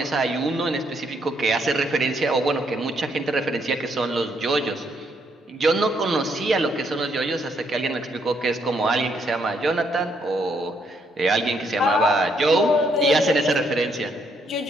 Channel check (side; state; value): both; normal; correlation 0.73